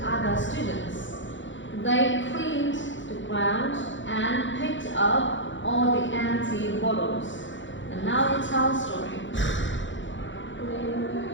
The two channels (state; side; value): late; right; 0.55 ms